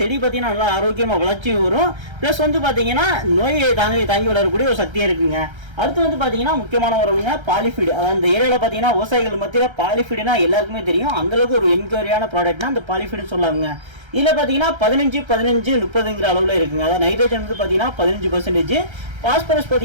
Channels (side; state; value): left; late; 1.3 ms